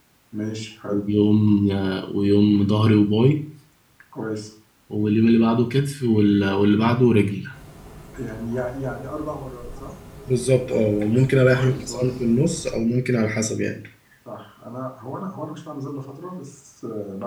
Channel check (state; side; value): identical; both; correlation 1.00